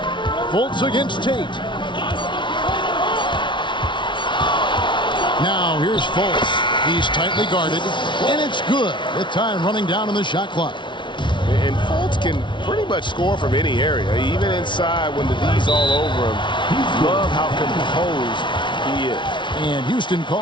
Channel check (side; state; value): right; late; 0.24 ms